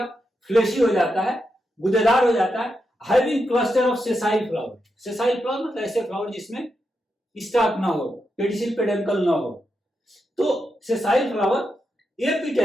फ्लेशी हो जाता है, गुदेदार हो जाता है। Having cluster of sessile flower. Sessile flower मतलब ऐसे फ्लावर जिसमें स्टॉक ना हो, पेडिसिल पेडेंकल ना हो। तो सेसाइल फ्लावर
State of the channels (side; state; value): both; normal; correlation 0.85